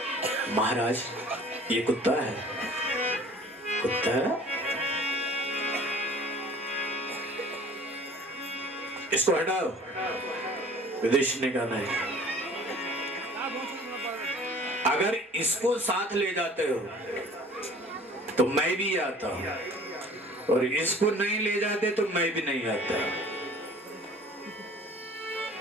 महाराज ये कुत्ता है। कुत्ता है? इसको हटाओ। युधिष्ठिर ने कहा नहीं, अगर इसको साथ ले जाते हो तो मैं भी आता हूं, और इसको नहीं ले जाते तो मैं भी नहीं आता।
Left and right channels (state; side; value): normal; both; correlation 0.49